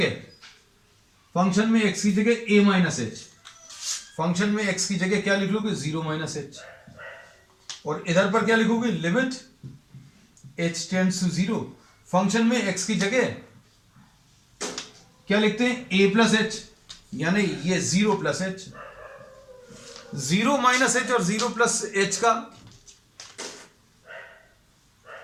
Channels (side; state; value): both; identical; correlation 1.00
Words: फंक्शन में x की जगह a माइनस एच, फंक्शन में x की जगह क्या लिख लोगे 0 माइनस एच, और इधर पर क्या लिखोगे, limit h tends to 0, function में x की जगह क्या लिखते हैं a प्लस एच, यानी ये 0 प्लस एच, 0 माइनस एच और 0 प्लस एच का,